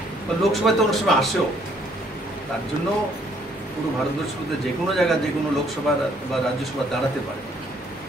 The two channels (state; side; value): normal; both; correlation 0.65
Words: বা লোকসভায় তো অনেক সময় আসেও, তার জন্য পুরো ভারতবর্ষের মধ্যে যে কোনো জায়গায় যে কোনো লোকসভা বা রাজ্যসভা দাঁড়াতে পারে।